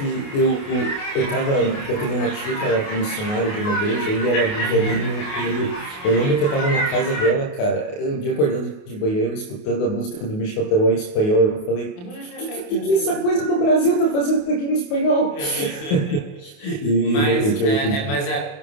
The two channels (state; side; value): late; right; 28 ms